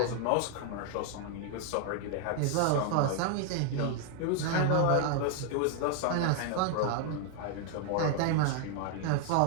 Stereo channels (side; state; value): both; different; correlation 0.00